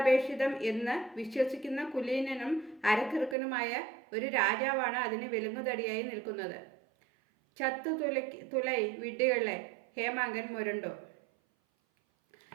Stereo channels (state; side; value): drops out; left; at 3.4 s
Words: എന്ന് വിശ്വസിക്കുന്ന കുലീനനും അരക്കിറുക്കനുമായ ഒരു രാജാവാണ് അതിന് വിലങ്ങുതടിയായി നിൽക്കുന്നത്. തുലൈ വിഡ്ഢികളെ, ഹേമാങ്കൻ മുരണ്ടു.